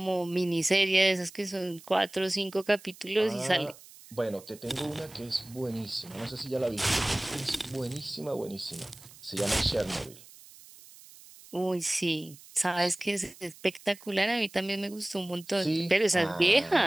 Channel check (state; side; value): noise; right; hiss, 21 dB below the sound